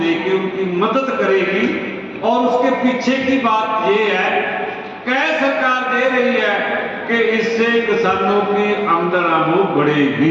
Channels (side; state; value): both; identical; correlation 1.00